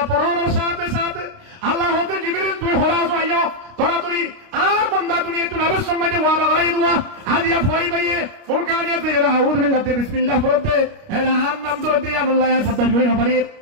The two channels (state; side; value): late; left; 29 ms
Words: পড়ার সাথে সাথে আল্লাহ হতে জিবরিল তুই হরাস আইয়া তরাতরি আর বান্দা দুনিয়া তুই নবীর সঙ্গে ওয়াদা করাই দুয়া হাদিয়া ফরাই ভাইয়ে ফুরকানিয়াতে এরা আউযু বিল্লাহি বিসমিল্লাহ পড়তে এরা নাম ধরে আল্লাহ পদ্দাশ করি নপারি